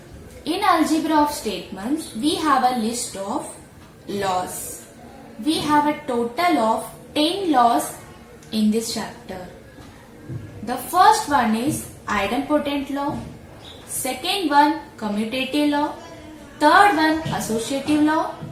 In algebra of statements, we have a list of laws. We have a total of 10 laws in this chapter. The first one is idempotent law, second one commutative law, third one associative law,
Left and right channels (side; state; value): both; identical; correlation 1.00